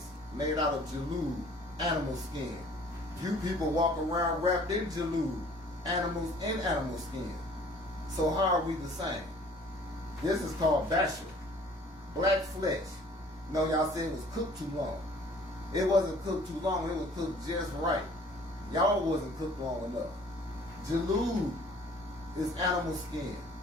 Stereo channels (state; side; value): normal; both; correlation 0.53